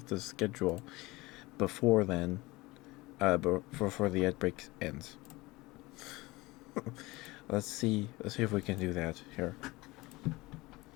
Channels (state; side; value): quieter; right; 21.5 dB